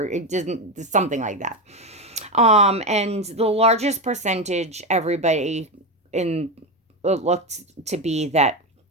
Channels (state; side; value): normal; both; correlation 0.14